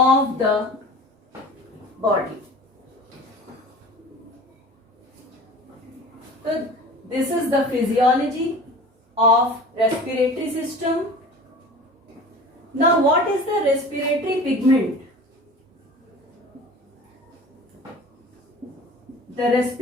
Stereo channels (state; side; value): normal; both; correlation 0.40